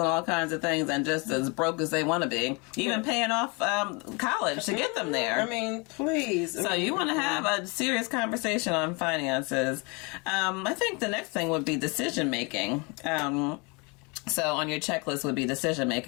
all kinds of things, and just as broke as they want to be, even paying off college to get them there. I mean, please. So you want to have a serious conversation on finances. I think the next thing would be decision making. So on your checklist would be decision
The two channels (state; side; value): quieter; right; 30.4 dB